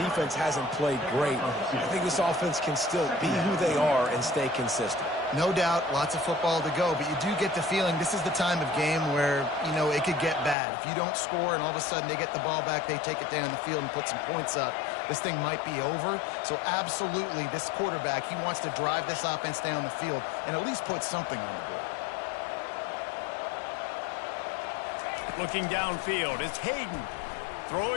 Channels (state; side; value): drops out; right; at 10.6 s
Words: hasn't played great. I think this offense can still be who they are and stay consistent. No doubt, lots of football to go, but you do get the feeling this is the time of game where, you know, it could get bad. If you don't score and all of a sudden they get the ball back, they take it down the field and put some points up, this thing might be over. So absolutely, this quarterback, he wants to drive this offense down the field and at least put something on the board. Looking downfield, it's Hayden.